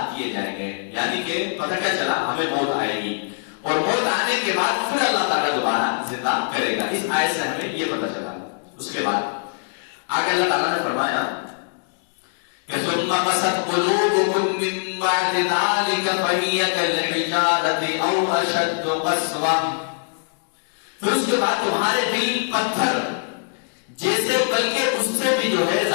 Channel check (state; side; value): silent; right; digital silence